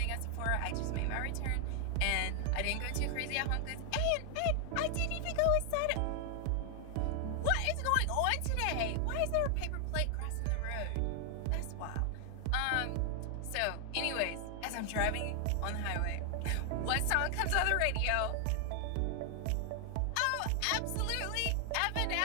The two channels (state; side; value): different; both; correlation 0.00